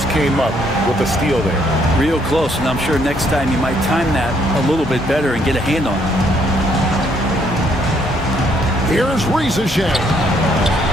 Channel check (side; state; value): both; normal; correlation 0.69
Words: came up with a steal there. Real close, and I'm sure next time you might time that a little bit better and get a hand on it. Here's Rizashe.